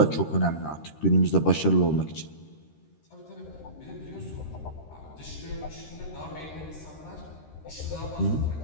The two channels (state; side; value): late; right; 13 ms